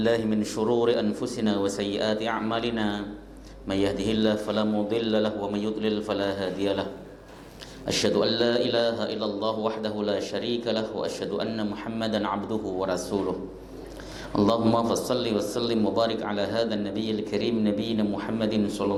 min shururi anfusina wa sayyiati a'malina. May yahdihillahu fala mudilla lahu wa may yudlil fala hadiya lahu. Asyhadu an la ilaha illallah wahdahu la syarika lahu wa asyhadu anna Muhammadan 'abduhu wa rasuluh. Allahumma fassalli wa sallim wa barik ala hadzal nabiyil karim nabiyina Muhammadin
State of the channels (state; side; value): identical; both; correlation 1.00